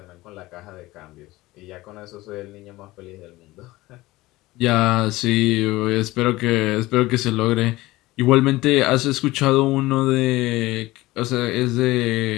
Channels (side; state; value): right; quieter; 19.0 dB